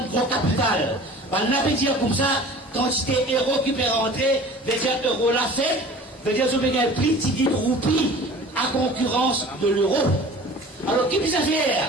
gros capital. On avait dit comme ça, quand c'était euro qui peut rentrer, veut dire euro la fête, veut dire que vous avez un plus petit roupie à concurrence de l'euro. Alors, qui peut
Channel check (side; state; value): both; normal; correlation 0.43